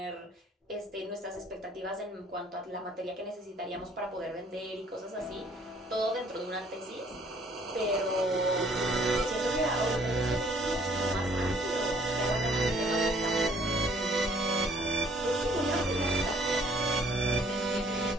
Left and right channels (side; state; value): both; normal; correlation 0.60